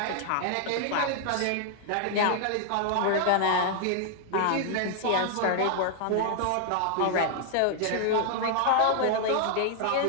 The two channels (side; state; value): both; different; correlation 0.00